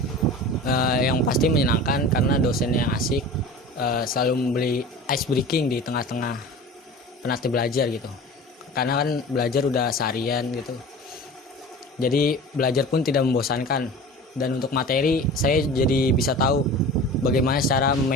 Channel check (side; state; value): both; normal; correlation 0.37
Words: yang pasti menyenangkan karena dosennya yang asik, selalu memberi ice breaking di tengah-tengah penat belajar gitu. Karena kan belajar udah seharian gitu. Jadi belajar pun tidak membosankan, dan untuk materi saya jadi bisa tahu bagaimana cara